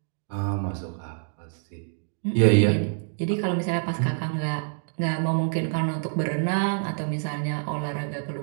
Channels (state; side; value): silent; left; digital silence